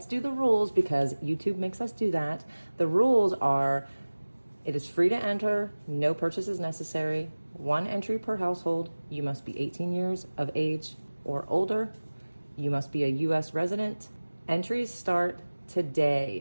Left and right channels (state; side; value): inverted; both; correlation -1.00